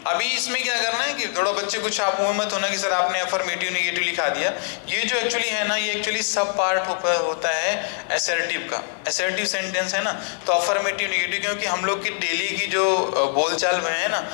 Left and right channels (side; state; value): right; silent; 59 dB below the other